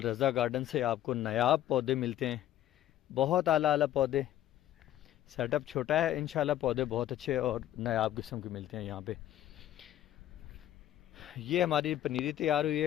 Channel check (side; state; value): right; quieter; 12.7 dB